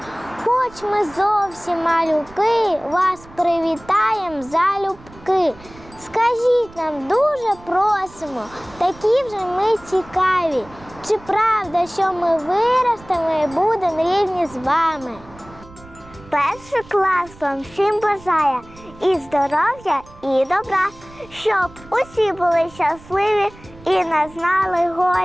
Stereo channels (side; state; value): right; noise; rumble, 22 dB below the sound